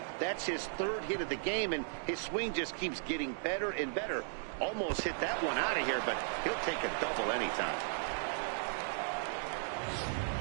That's his third hit of the game, and his swing just keeps getting better and better. Almost hit that one out of here, but he'll take a double anytime.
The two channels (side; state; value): left; silent; digital silence